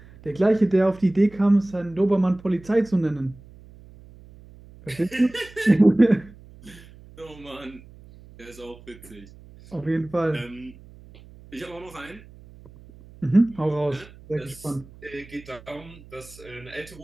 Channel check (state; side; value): noise; right; hum, 21 dB below the sound